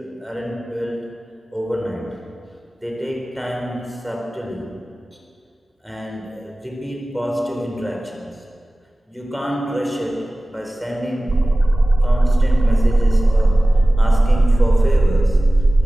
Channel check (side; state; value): both; normal; correlation 0.97